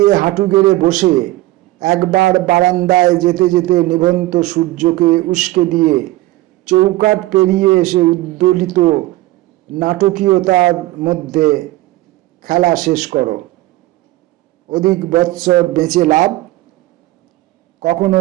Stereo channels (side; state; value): left; quieter; 17.8 dB